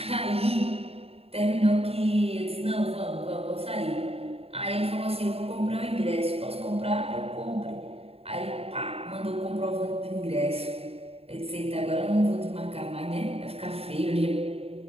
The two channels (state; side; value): late; left; 0.29 ms